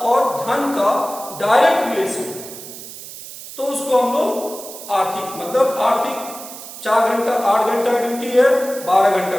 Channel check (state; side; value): noise; right; hiss, 13 dB below the sound